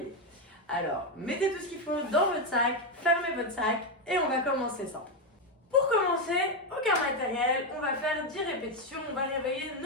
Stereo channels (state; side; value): normal; both; correlation 0.07